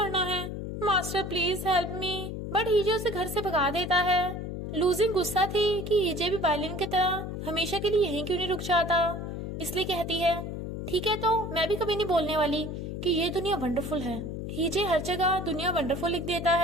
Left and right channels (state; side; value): noise; left; hum, 6 dB below the sound